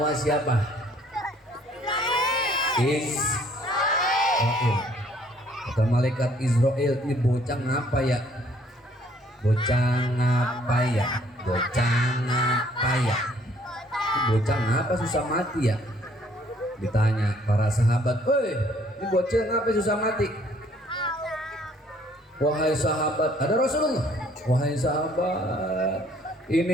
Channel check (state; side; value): normal; both; correlation 0.61